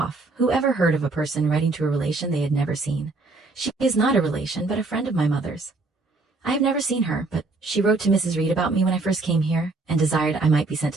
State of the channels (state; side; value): quieter; left; 3.5 dB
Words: Who ever heard of a person writing to a relation they had never seen? She is not a relation, but a friend of my mother's. I have never seen her, but she wrote to Mrs. Reed about me when I first came here, and desired I might be sent